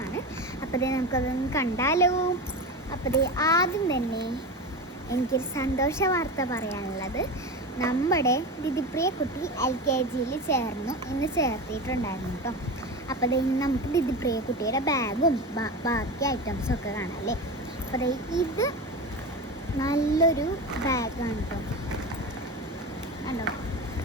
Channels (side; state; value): both; normal; correlation 0.25